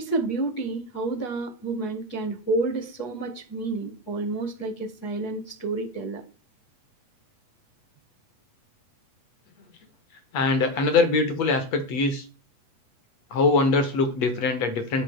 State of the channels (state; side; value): late; right; 8.2 ms